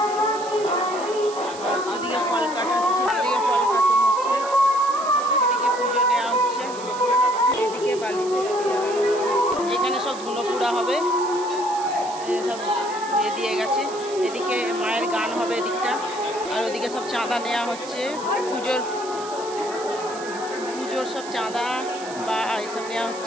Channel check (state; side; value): noise; right; hiss, 15 dB below the sound